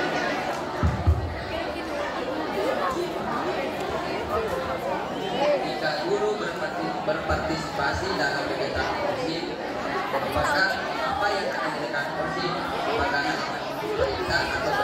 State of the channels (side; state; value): both; identical; correlation 1.00